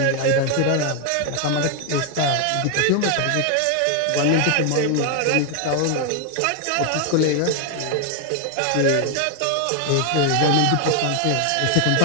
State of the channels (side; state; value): both; different; correlation 0.01